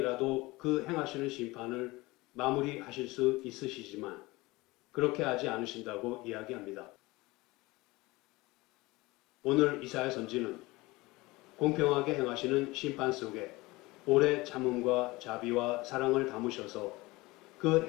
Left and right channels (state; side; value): quieter; right; 21.4 dB